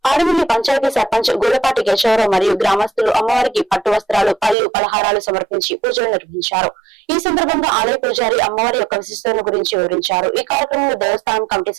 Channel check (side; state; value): left; drops out; at 4.5 s